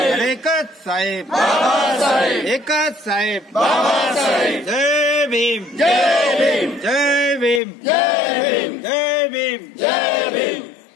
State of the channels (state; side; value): drops out; right; at 7.6 s